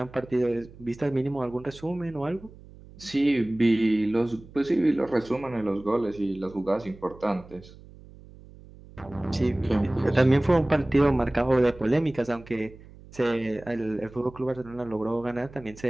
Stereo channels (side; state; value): right; noise; hum, 20 dB below the sound